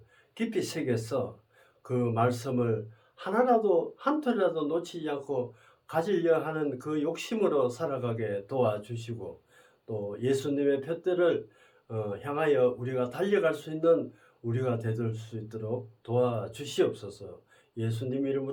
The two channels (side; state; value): both; identical; correlation 1.00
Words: 깊이 새겨서 그 말씀을 하나라도 한 톨이라도 놓치지 않고 가지려 하는 그 욕심으로 살아가게 도와주시고 또 예수님의 표대를 향하여 우리가 달려갈 수 있는 우리가 되돌 수 있도록 도와주시옵소서. 예수님